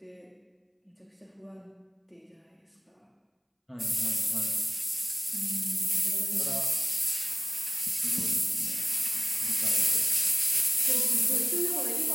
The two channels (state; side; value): identical; both; correlation 1.00